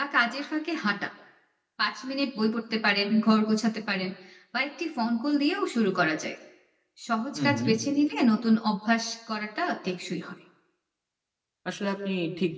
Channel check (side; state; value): both; identical; correlation 1.00